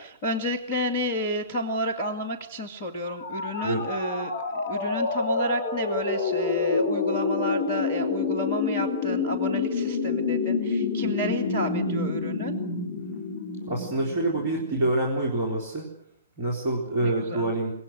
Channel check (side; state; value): both; inverted; correlation -0.39